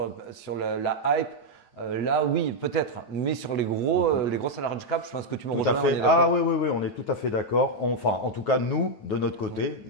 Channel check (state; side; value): late; right; 9.1 ms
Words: la hype. Là, oui, peut-être. Mais sur les grosses large cap, je pense que tu me Tout à rejoins. fait. Ah oui, oui, oui, on est tout à fait d'accord. Enfin, en tout cas, nous, de notre côté,